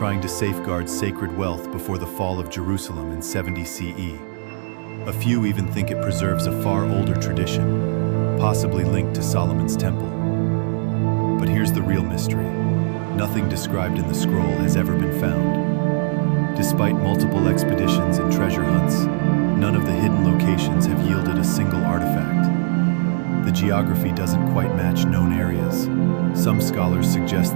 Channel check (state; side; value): silent; left; digital silence